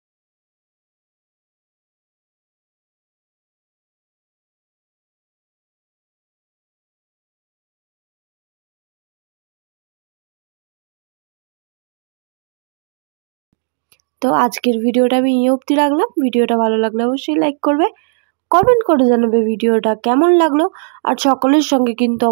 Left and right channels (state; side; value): silent; left; digital silence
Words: তো আজকের ভিডিওটা আমি এই অবধি রাখলাম। ভিডিওটা ভালো লাগলে অবশ্যই লাইক করবে, কমেন্ট করে জানাবে ভিডিওটা কেমন লাগলো, আর সকলের সঙ্গে কিন্তু